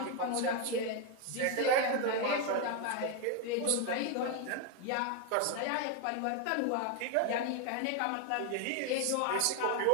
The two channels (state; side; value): different; both; correlation 0.01